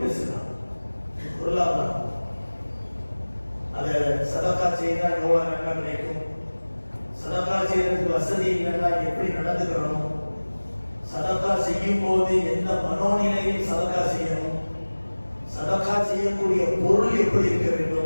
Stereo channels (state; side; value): inverted; both; correlation -1.00